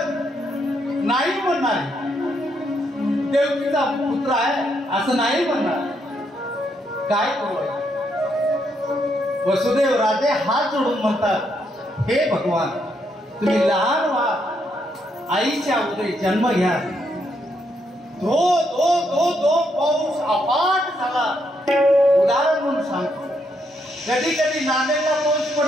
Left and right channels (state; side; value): normal; both; correlation 0.76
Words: नाही म्हणणार देवकीचा पुत्र आहे असं नाही म्हणणार. काय करू? वसुदेव राजे हात जोडून म्हणतात, हे भगवान, तुम्ही लहान व्हा, आईच्या उदरी जन्म घ्या. धो धो धो धो पाऊस अफाट झाला. उदाहरण म्हणून सांगतो, कधी कधी नांदेडला पाऊस